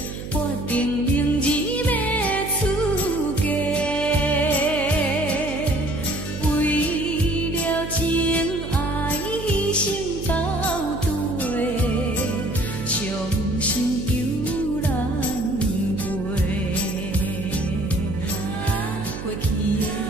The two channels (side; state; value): right; noise; hum, 9 dB below the sound